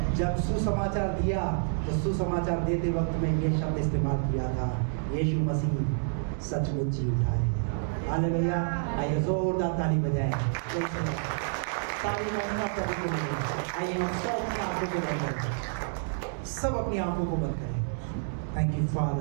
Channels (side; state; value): left; silent; digital silence